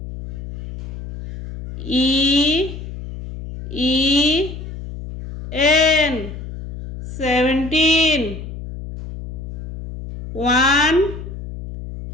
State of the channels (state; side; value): noise; left; hum, 10 dB below the sound